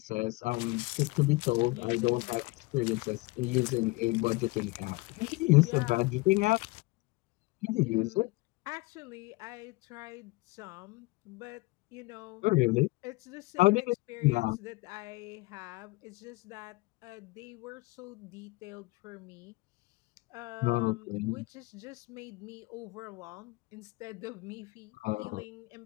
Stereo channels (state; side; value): quieter; right; 23.5 dB